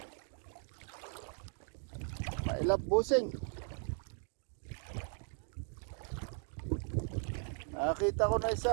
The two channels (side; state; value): left; silent; 53 dB below the other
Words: Ilap busing. Nakakita ko na